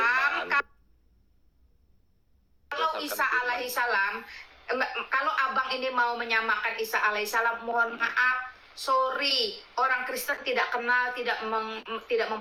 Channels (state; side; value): identical; both; correlation 1.00